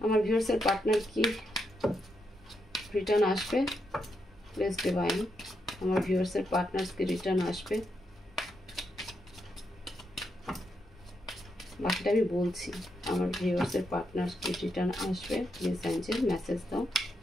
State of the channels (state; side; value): normal; both; correlation 0.81